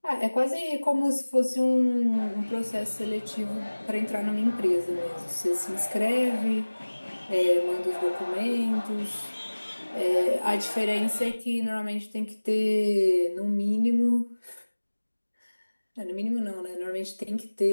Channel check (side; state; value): both; inverted; correlation -1.00